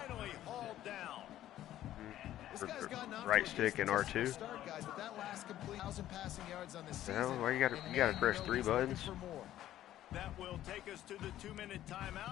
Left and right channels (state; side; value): quieter; right; 13.0 dB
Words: hauled down. Right stick and R2. Start, guys, but that last complete 1,000 passing yards on the season. Well, why you gotta press 3 buttons? That will take us to the 2-minute